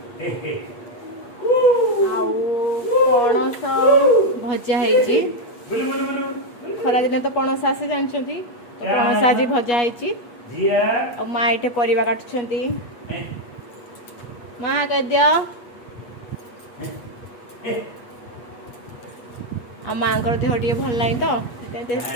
आउ पणस भजा होईची खरा दिन तो पणस आसे जानछंती तो पणस आज भजा होईची आ माँ एठे परिवा काटुछंती माँ कह दियो आ माँ कर देह टिके भल नाही तो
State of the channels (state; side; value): late; right; 8.4 ms